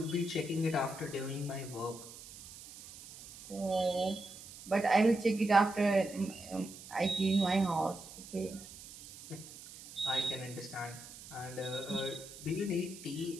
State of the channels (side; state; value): right; noise; hiss, 16 dB below the sound